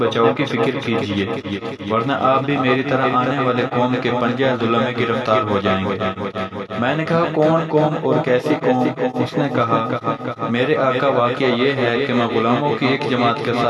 کی فکر کیجئے، ورنہ آپ بھی میری طرح آنے والے قوم کے پنجہ ظلم میں گرفتار ہو جائیں گے۔ میں نے کہا، کون قوم اور کیسی قوم؟ اس نے کہا، میرے آقا، واقعہ یہ ہے کہ میں غلاموں کی ایک جماعت کے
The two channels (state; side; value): identical; both; correlation 1.00